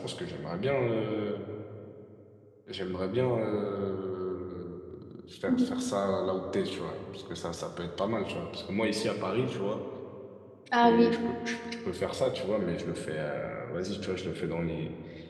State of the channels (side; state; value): both; identical; correlation 1.00